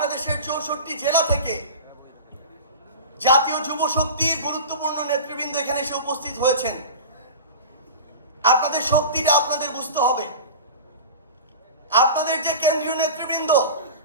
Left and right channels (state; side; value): inverted; both; correlation -0.32